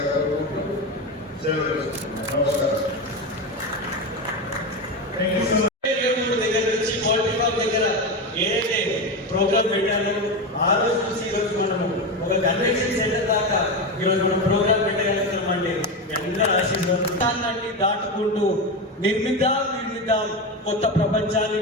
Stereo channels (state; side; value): normal; both; correlation 0.17